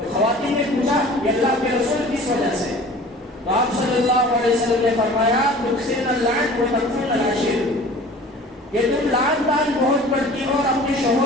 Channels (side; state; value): both; normal; correlation 0.44